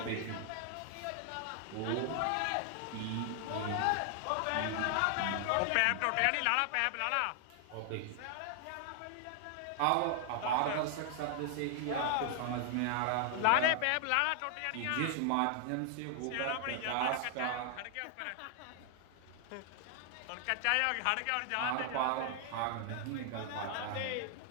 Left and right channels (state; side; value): different; both; correlation 0.00